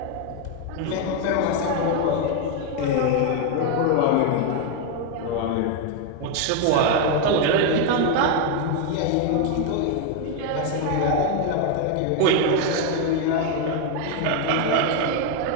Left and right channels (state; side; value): different; both; correlation 0.01